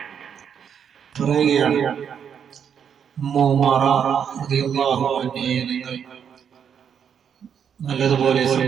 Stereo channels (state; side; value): quieter; left; 7.8 dB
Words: പറയുകയാണ്, ഉമ്മു ഉമാറ റളിയല്ലാഹു അൻഹയെ നിങ്ങൾ നല്ലതുപോലെ